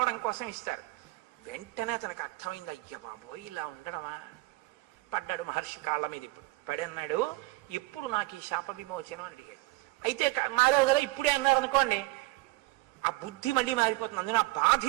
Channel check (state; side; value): quieter; left; 21.2 dB